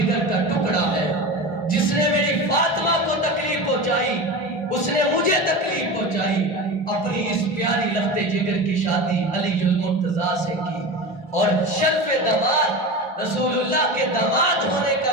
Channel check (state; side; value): normal; both; correlation 0.27